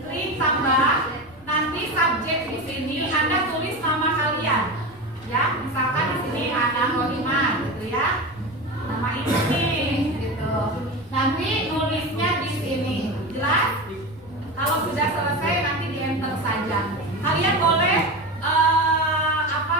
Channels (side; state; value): right; noise; rumble, 26 dB below the sound